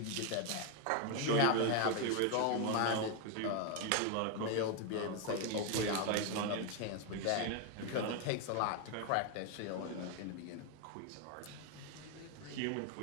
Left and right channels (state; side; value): different; both; correlation 0.01